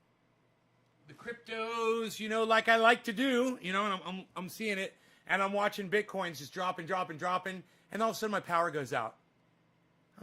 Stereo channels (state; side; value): identical; both; correlation 1.00